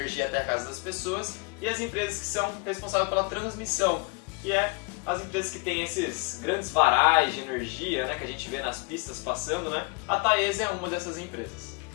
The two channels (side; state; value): right; quieter; 30.9 dB